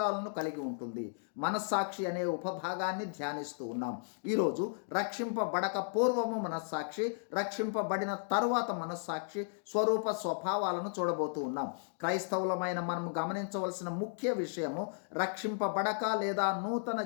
కలిగి ఉంటుంది. మనస్సాక్షి అనే ఉపభాగాన్ని ధ్యానిస్తూ ఉన్నాం. ఈరోజు రక్షింపబడక పూర్వము మనస్సాక్షి, రక్షింపబడిన తరువాత మనస్సాక్షి స్వరూప స్వభావాలను చూడబోతూ ఉన్నాం. క్రైస్తవులమైన మనం గమనించవలసిన ముఖ్య విషయము, రక్షింపబడక లేదా నూతన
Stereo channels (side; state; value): right; silent; digital silence